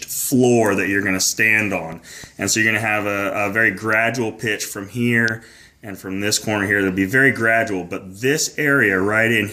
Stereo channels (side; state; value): both; identical; correlation 1.00